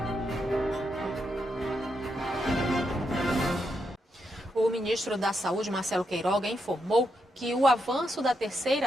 O ministro da Saúde, Marcelo Queiroga, informou que o avanço da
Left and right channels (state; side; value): normal; both; correlation 0.82